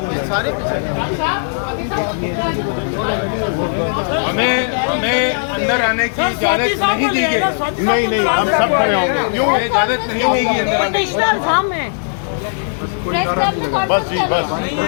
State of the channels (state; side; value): silent; right; digital silence